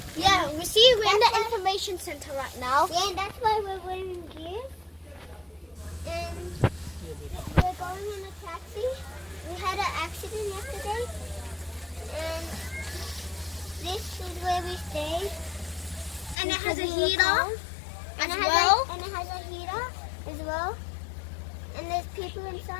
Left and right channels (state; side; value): drops out; right; at 16.4 s